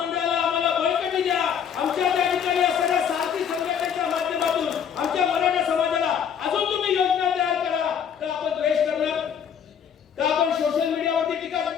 आम्हाला बळकटी द्या, आमच्या त्या ठिकाणी असणाऱ्या सारथी संघटनेच्या माध्यमातून आमच्या मराठा समाजाला अजून तुम्ही योजना तयार करा. का आपण द्वेष करणार? का आपण सोशल मीडियावरती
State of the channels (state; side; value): quieter; right; 8.0 dB